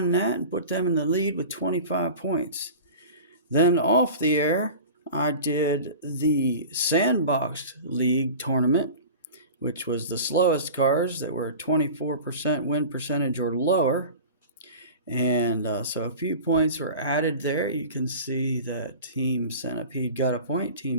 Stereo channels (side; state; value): both; inverted; correlation -0.36